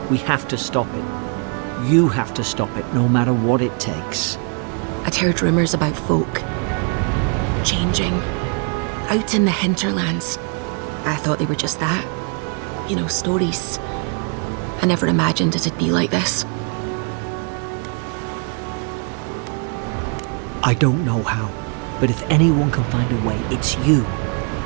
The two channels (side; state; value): left; quieter; 38.0 dB